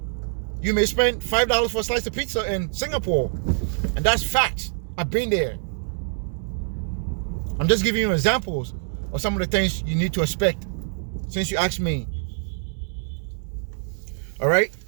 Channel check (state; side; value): silent; left; 62 dB below the other